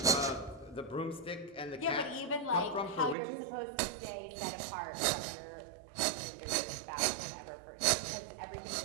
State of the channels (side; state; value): left; drops out; at 3.2 s